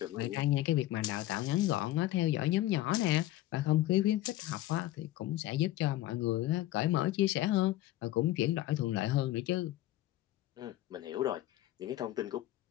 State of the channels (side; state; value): right; quieter; 15.1 dB